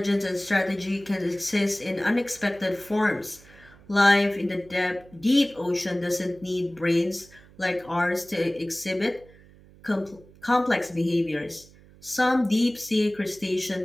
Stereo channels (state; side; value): noise; right; hum, 24 dB below the sound